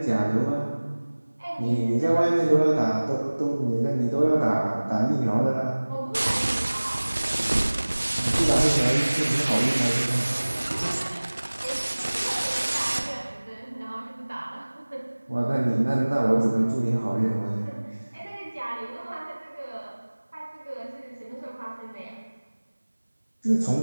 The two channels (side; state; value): both; inverted; correlation -1.00